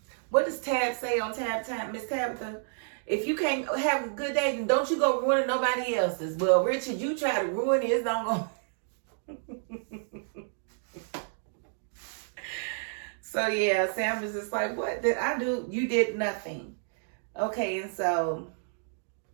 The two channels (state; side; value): silent; left; digital silence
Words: What does Tab say on Tab Time, Miss Tabitha? If you can't have a good day, then don't you go ruin nobody else's. Well, Richard, you try to ruin his, don't go. So yeah, Sam is just like, what did I do? You did nothing. Okay, and so